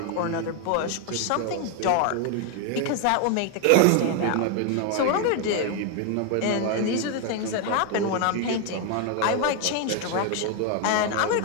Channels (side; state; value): both; different; correlation 0.01